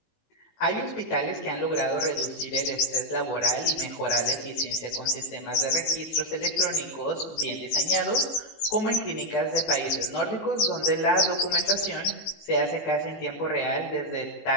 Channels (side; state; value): right; late; 18 ms